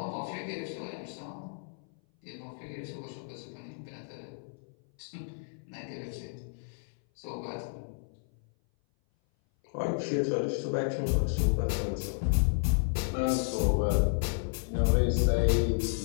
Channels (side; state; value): right; silent; 57 dB below the other